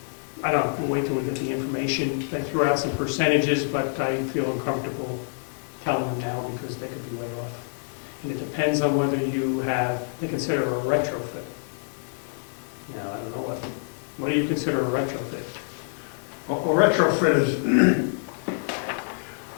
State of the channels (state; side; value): silent; right; digital silence